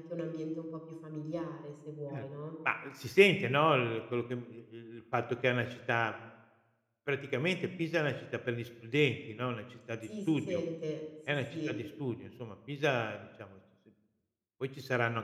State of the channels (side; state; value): both; identical; correlation 1.00